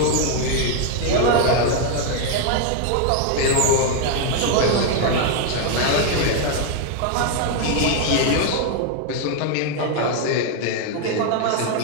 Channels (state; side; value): different; both; correlation 0.00